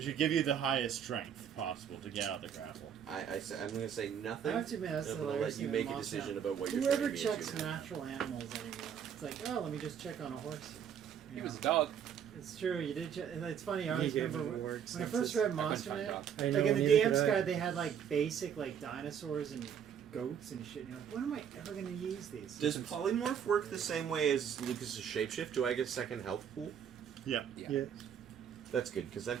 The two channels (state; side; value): quieter; left; 8.3 dB